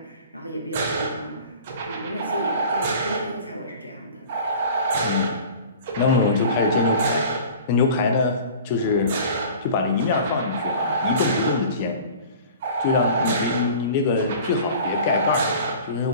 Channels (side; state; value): both; inverted; correlation -0.42